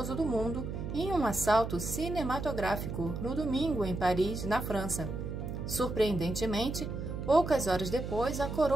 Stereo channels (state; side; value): noise; right; hum, 5 dB below the sound